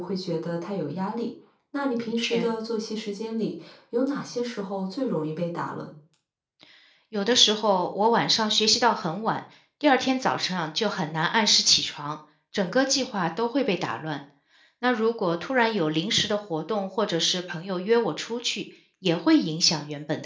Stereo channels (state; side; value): identical; both; correlation 1.00